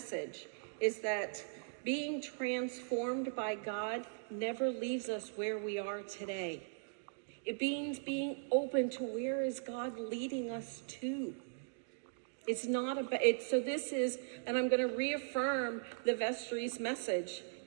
is that being transformed by God never leaves us where we are today. It means being open to where is God leading us to. It's not about, so this is, and I'm going to reaffirm the vestry's message.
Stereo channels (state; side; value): silent; left; digital silence